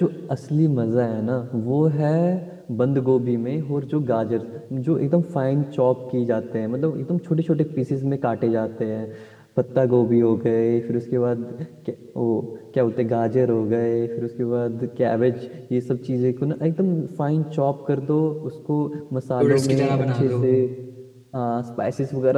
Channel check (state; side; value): identical; both; correlation 1.00